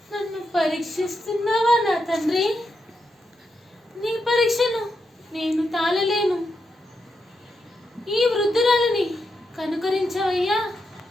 నన్ను పరీక్షిస్తున్నావా నా తండ్రి? నీ పరీక్షను నేను తాళలేను. ఈ వృద్ధురాలిని కనుకరించవయ్యా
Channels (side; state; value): both; normal; correlation 0.85